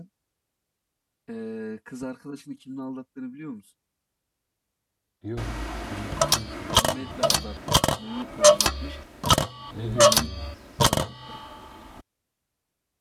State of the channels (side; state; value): both; identical; correlation 1.00